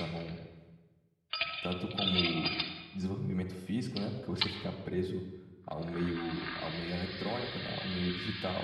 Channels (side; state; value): both; identical; correlation 1.00